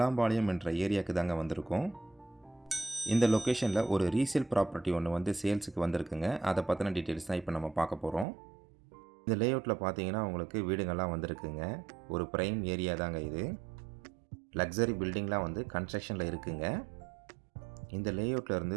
என்ற ஏரியாவுக்கு தாங்க வந்திருக்கோம். இந்த லொக்கேஷனில் ஒரு ரீசேல் ப்ராப்பர்ட்டி ஒன்று சேல்ஸுக்கு வந்திருக்குங்க. அதை பற்றின டீட்டெயில்ஸ் தான் இப்போ நம்ம பார்க்க போகிறோம். இந்த லேஅவுட்டில் பார்த்தீங்கன்னா உங்களுக்கு வீடுங்கள்லாம் வந்திருக்குங்க. ஒரு ப்ரைம் ஏரியா தாங்க இது. லக்ஸரி பில்டிங்லாம் கன்ஸ்ட்ரக்ஷனில் இருக்குங்க. இந்த லேஅவுட்டில் இருந்து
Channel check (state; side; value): drops out; left; at 8.2 s